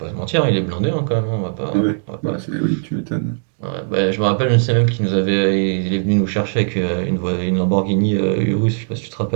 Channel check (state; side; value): silent; left; digital silence